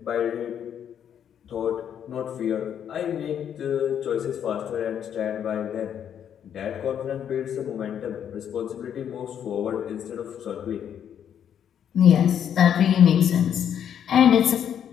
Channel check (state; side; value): quieter; right; 9.0 dB